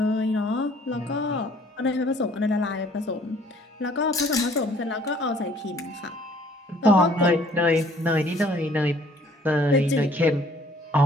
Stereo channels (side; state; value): both; normal; correlation 0.58